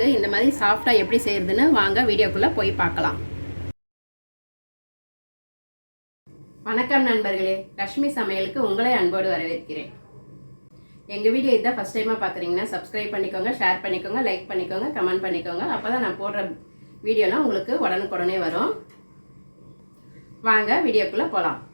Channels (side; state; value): both; inverted; correlation -1.00